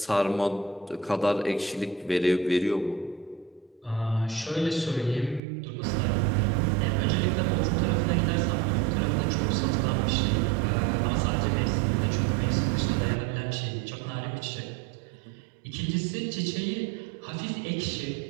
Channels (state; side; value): drops out; left; at 5.4 s